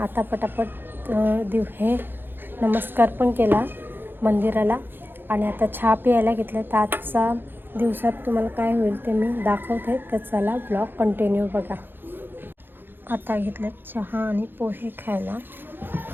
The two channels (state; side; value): late; left; 0.099 ms